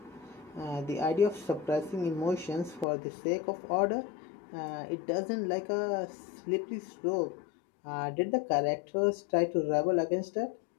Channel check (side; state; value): right; drops out; at 2.9 s